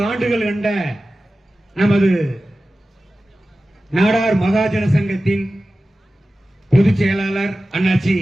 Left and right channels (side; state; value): both; normal; correlation 0.95